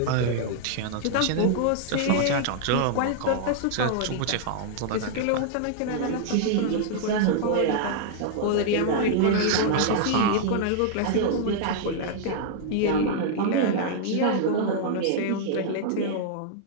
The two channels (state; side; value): different; both; correlation -0.01